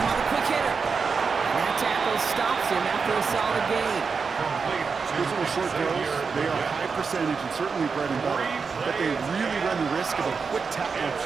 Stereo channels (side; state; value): left; quieter; 5.2 dB